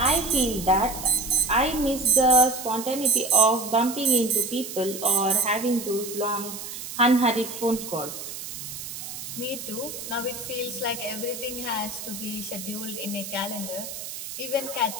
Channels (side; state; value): right; noise; hiss, 9 dB below the sound